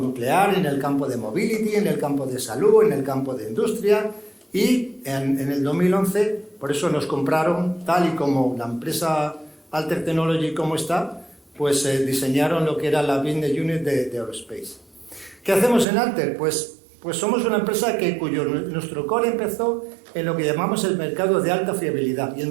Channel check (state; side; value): drops out; left; at 15.9 s